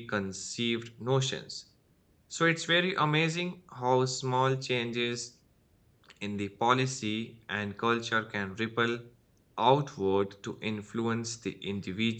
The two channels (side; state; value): both; identical; correlation 1.00